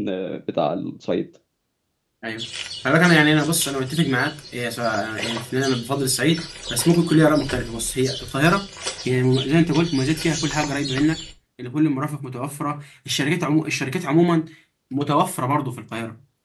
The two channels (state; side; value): identical; both; correlation 1.00